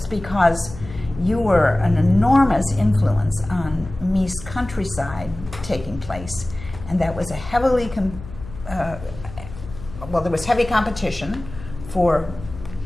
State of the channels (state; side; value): noise; left; hum, 14 dB below the sound